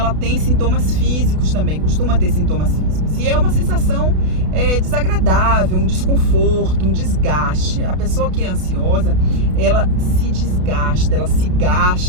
tem sintomas físicos também, costuma ter sintomas físicos. E é uma sensação desagradável, um desconforto, um desgaste. A pessoa que é ansiosa, ela se desgasta, ela se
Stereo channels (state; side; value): late; left; 32 ms